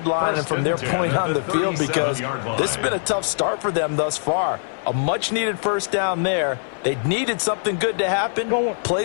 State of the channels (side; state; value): right; silent; 56 dB below the other